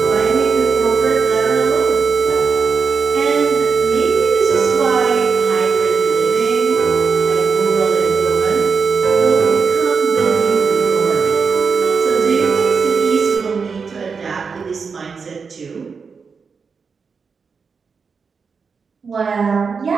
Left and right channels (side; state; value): left; quieter; 5.4 dB